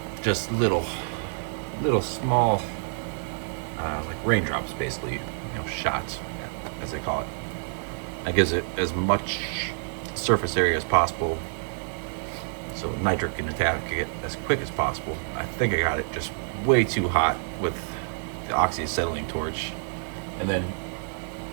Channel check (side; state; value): left; silent; 60 dB below the other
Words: just little small like raindrops, basically, shots, as they call it. That gives it as much surface area as possible, so nitric can attack it as quick as possible. I think I got it just way too hot with the oxyacetylene torch, and then